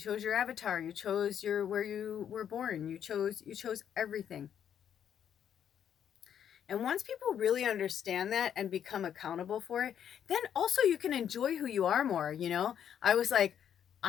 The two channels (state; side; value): quieter; right; 9.1 dB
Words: your avatar, you chose where you were born, you chose everything. And once people really understand that and become accountable for it, then also you can enjoy who you are more, I was like,